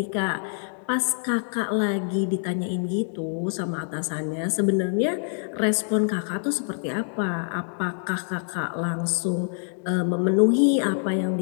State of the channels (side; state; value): right; silent; digital silence